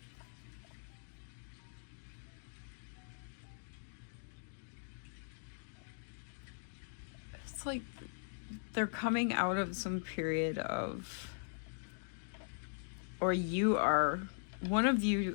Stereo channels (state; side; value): silent; right; digital silence